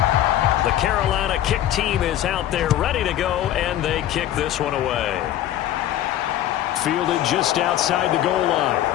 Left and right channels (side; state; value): right; quieter; 12.3 dB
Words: The Carolina kick team is out there ready to go, and they kick this one away. Fielded just outside the goal line.